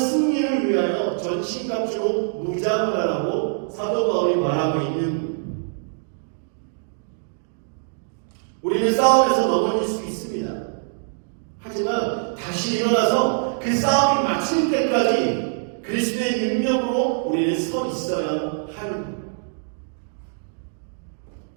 위하여 전신갑주로 무장을 하라고 사도 바울이 말하고 있는 거예요. 우리는 싸움에서 넘어질 수 있습니다. 하지만 다시 일어나서 그 싸움이 마칠 때까지 그리스도의 능력으로 우리는 서 있어야 하는 거예요.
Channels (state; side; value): silent; left; digital silence